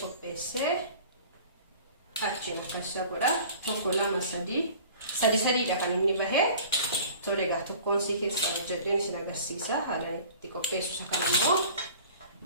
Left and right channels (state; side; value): inverted; both; correlation -0.45